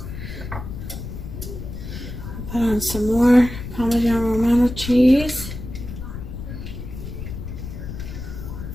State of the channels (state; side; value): noise; left; rumble, 8 dB below the sound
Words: Put on some more Parmesan Romano cheese.